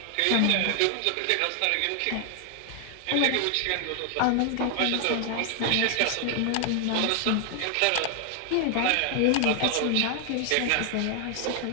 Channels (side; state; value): both; different; correlation 0.00